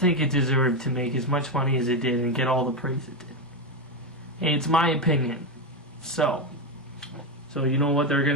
it deserved to make as much money as it did and get all the praise it did. It's my opinion. So you know what they're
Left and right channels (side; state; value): both; normal; correlation 0.10